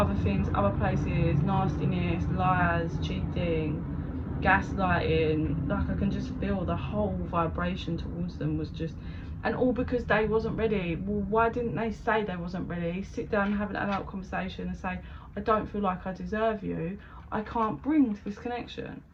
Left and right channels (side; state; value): both; identical; correlation 1.00